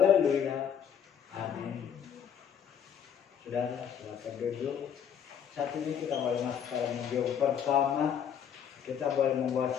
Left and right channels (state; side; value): quieter; right; 8.3 dB